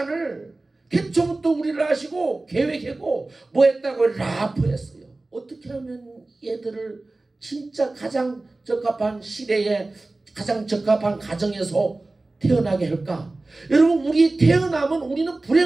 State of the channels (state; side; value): quieter; left; 3.1 dB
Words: 태초부터 우리를 아시고 계획하고 뭐 했다고? 라프했어요. 어떻게 하면 얘들을 진짜 가장 적합한 시대에 가장 적합한 가정에서 태어나게 할까? 여러분, 우리 태어나면 우리는